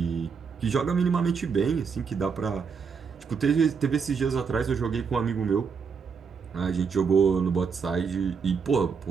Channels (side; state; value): left; quieter; 5.9 dB